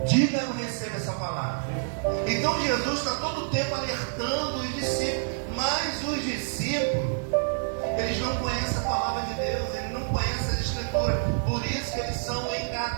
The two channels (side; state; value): left; silent; digital silence